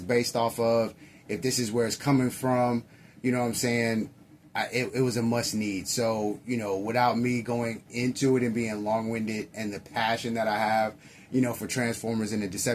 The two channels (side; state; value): both; identical; correlation 1.00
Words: based off of, if this is where it's coming from, you know what I'm saying, it was a must need. So, without me going into it and being long-winded, and the passion that I have, for Transformers and the